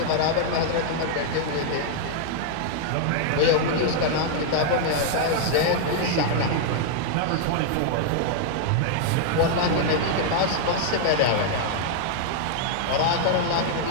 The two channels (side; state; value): both; different; correlation 0.00